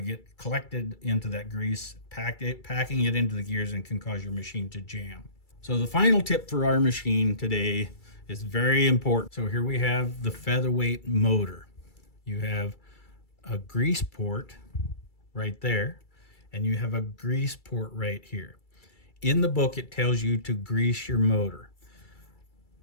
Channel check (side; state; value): right; late; 2.3 ms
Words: get collected into that grease, packing it into the gears, and can cause your machine to jam. So the final tip for our machine today is very important. So here we have the Featherweight motor. You have a grease port right there, and you have a grease port right here. In the book, it tells you to grease your motor.